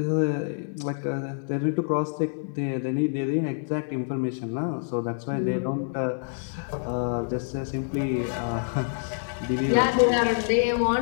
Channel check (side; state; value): right; silent; digital silence